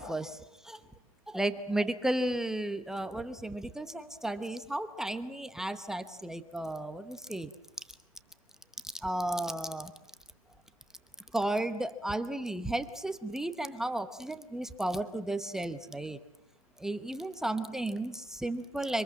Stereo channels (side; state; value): both; normal; correlation 0.89